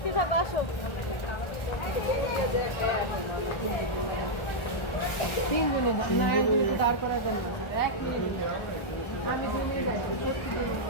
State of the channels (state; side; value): late; right; 1.3 ms